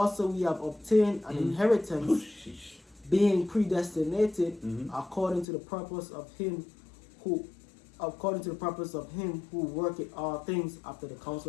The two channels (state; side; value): drops out; right; at 5.5 s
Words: we have obtained an inheritance, being predestinated according to the purpose of him who worketh all things after the